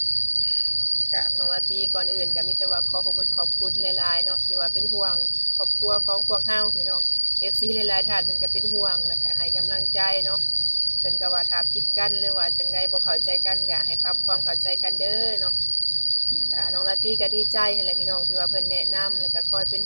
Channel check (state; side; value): inverted; both; correlation -1.00